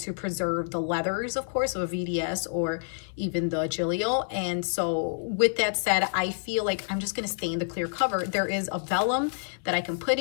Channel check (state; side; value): silent; right; 59 dB below the other